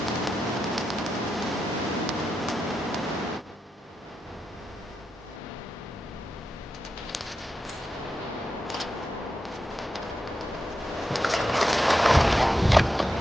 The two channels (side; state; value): both; normal; correlation 0.87